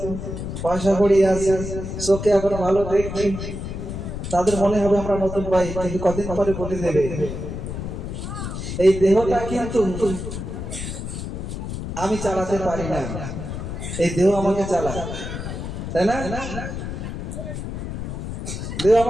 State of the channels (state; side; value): noise; left; rumble, 6 dB below the sound